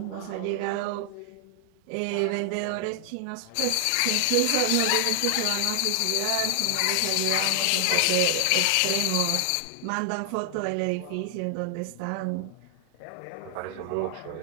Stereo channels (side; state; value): both; different; correlation 0.00